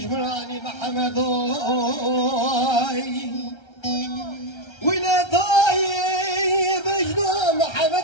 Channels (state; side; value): late; right; 1.3 ms